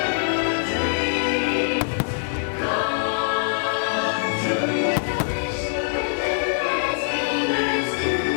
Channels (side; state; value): right; silent; digital silence